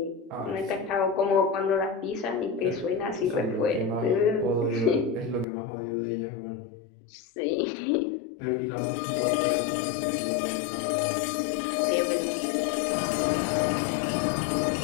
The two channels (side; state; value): right; drops out; at 5.5 s